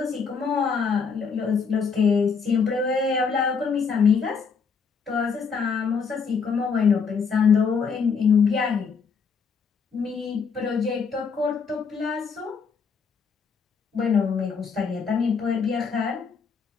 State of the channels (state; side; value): quieter; right; 5.7 dB